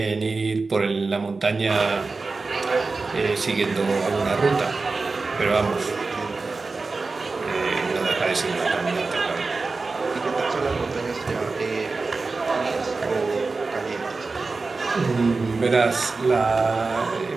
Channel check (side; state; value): left; quieter; 3.9 dB